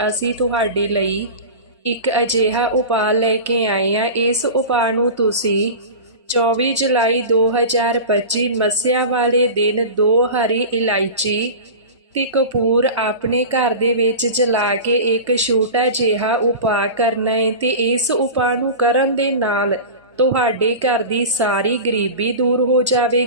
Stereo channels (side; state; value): both; inverted; correlation -0.30